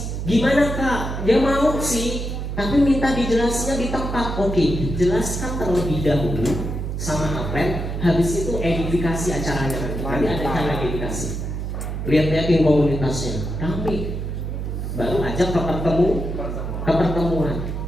Gimana Kak? Dia mau sih, tapi minta dijelasnya di tempat. Oke, jelaskan terlebih dahulu sama upline. Habis itu edifikasi acaranya nanti. Nanti ada cara edifikasi. Lihat-lihatin komunitasnya, ramai. Baru ajak ke pertemuan.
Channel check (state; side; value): noise; right; hum, 4 dB below the sound